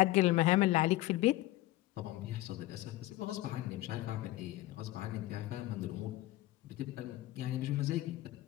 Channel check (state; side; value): quieter; right; 16.8 dB